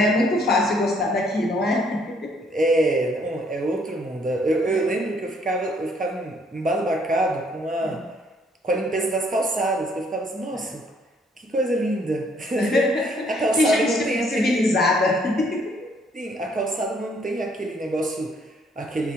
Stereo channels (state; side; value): normal; both; correlation 0.66